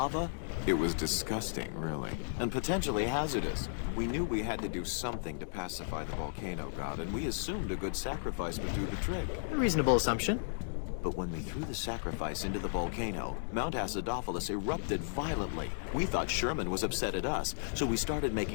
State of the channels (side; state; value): right; silent; digital silence